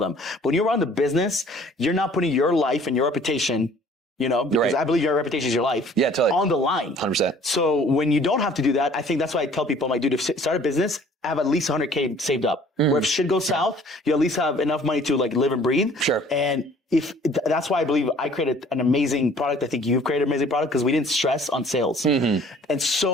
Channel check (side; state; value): both; normal; correlation 0.54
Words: But when you're around the business, you're not putting your life and your reputation, you know, because I believe your reputation is your life on the line. 100%. So when you don't have to do that, I think that's why I tell people, I'm like, dude, if start a business, have at least 100K saved up. Where if shit goes south, you at least have enough money to like live and breathe. And that's why I believe I created an amazing product. I think you've created an amazing product because we didn't stress on sales. And